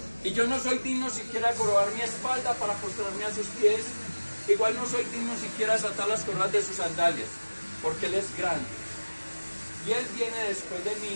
Y yo no soy digno siquiera de corrobar mi espalda para postrarme a sus pies. Igual no soy digno siquiera de desatar las correas de sus sandalias, porque él es grande. Y él viene después de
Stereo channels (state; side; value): inverted; both; correlation -1.00